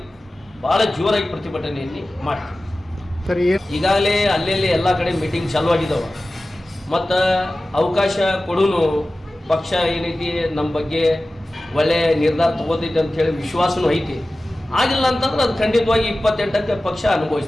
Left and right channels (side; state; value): both; normal; correlation 0.96